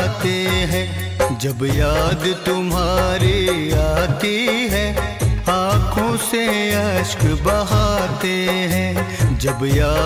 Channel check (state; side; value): identical; both; correlation 1.00